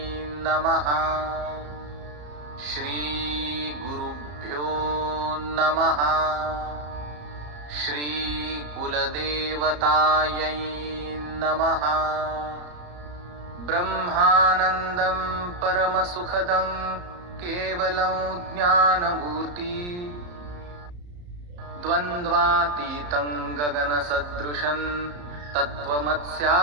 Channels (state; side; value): late; left; 34 ms